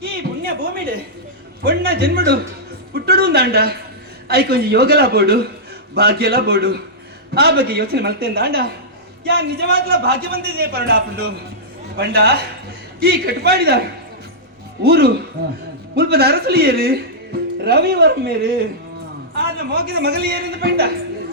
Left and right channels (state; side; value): normal; both; correlation -0.11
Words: ಈ ಪುಣ್ಯ ಭೂಮಿಡೆ ಪೊಣ್ಣ ಜನ್ಮಡು ಪುಟ್ಟಡು ದಾಂಡ ಐಕೊಂಜಿ ಯೋಗಲ ಬೋಡು ಭಾಗ್ಯಲ ಬೋಡು ಆ ಬಗ್ಗೆ ಯೋಚನೆ ಮಲ್ತೇಂದ ಅಂಡ ಯಾ ನಿಜವಾಗ್ಲ ಭಾಗ್ಯವಂತಿದೆ ಪರಡ ಪುಂಡು ಪಂಡ ಈ ಕಟ್ಪಾಡಿದ ಊರು ಮುಲ್ಪದ ಅರಸಲಿಯರು ರವಿವರ್ಮೇರು ಆದ್ರೆ ಮೋಗಿದ ಮಗಲಿಯರಿಂದ ಪಂಡ